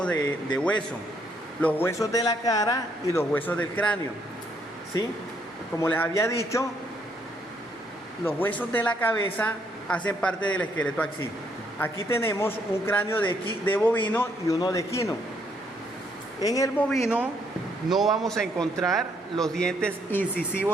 de huesos, los huesos de la cara y los huesos del cráneo, ¿sí? Como les había dicho, los huesos de la cabeza hacen parte del esqueleto axil. Aquí tenemos un cráneo de bovino y uno de equino. En el bovino no vamos a encontrar los dientes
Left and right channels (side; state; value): both; normal; correlation 0.71